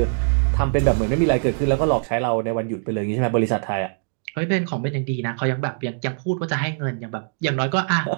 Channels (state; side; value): silent; left; digital silence